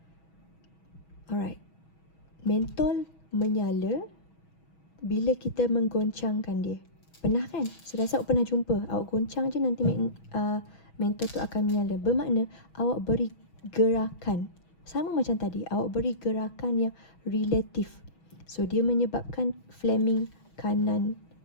Alright. Mentol menyala bila kita menggoncangkan dia. Pernah kan? Saya rasa awak pernah jumpa. Awak goncang je nanti mentol tu akan menyala. Bermakna awak beri gerakan. Sama macam tadi. Awak beri gerakan yang relatif. So, dia menyebabkan Fleming kanan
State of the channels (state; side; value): late; right; 6.2 ms